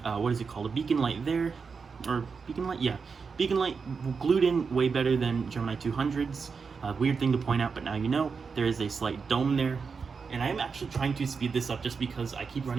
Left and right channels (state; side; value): quieter; left; 5.3 dB